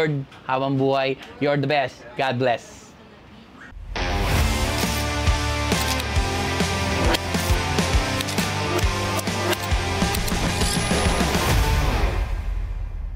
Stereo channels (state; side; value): identical; both; correlation 1.00